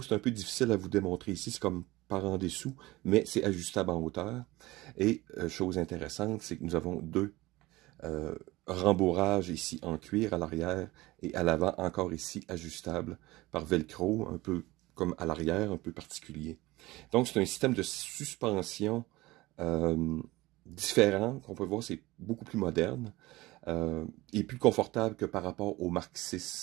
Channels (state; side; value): quieter; left; 19.7 dB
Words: C'est un peu difficile à vous démontrer ici, c'est comme par en dessous, mais c'est ajustable en hauteur. Et chose intéressante, c'est que nous avons deux rembourrages ici en cuir à l'arrière et à l'avant, encore ici ajustable par velcro, un peu comme à l'arrière, un peu particulier. Donc c'est un système de suspension différent, qu'on peut voir, c'est beaucoup plus moderne et plus confortable que par rapport au Mark